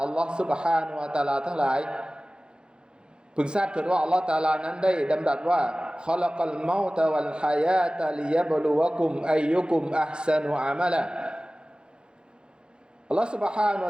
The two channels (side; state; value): left; late; 0.049 ms